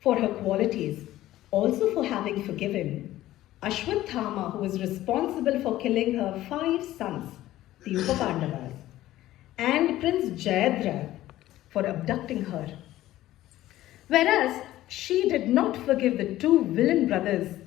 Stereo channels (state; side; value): quieter; right; 14.9 dB